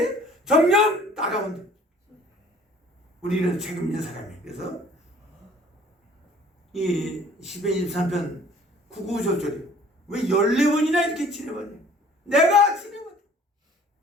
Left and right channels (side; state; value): both; normal; correlation 0.53